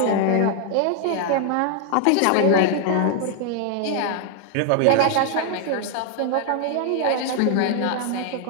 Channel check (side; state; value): both; different; correlation 0.00